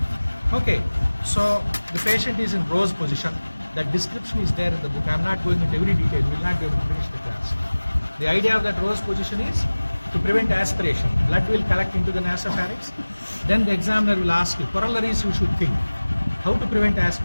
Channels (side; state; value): both; inverted; correlation -1.00